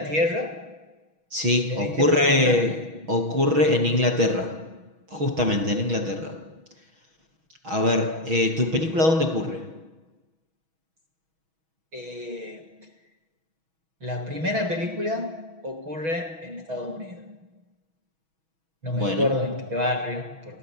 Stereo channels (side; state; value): left; late; 6.2 ms